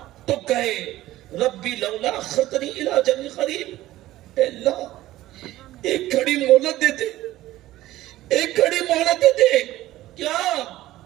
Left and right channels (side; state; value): left; quieter; 15.7 dB